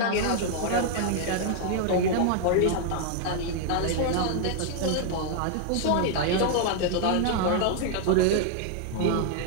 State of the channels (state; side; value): different; both; correlation 0.00